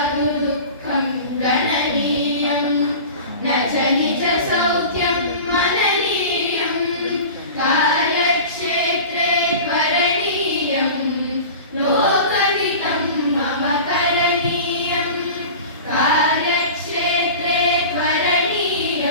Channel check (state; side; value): inverted; both; correlation -0.35